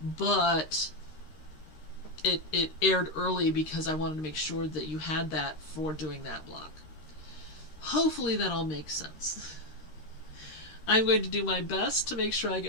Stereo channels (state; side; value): late; right; 13 ms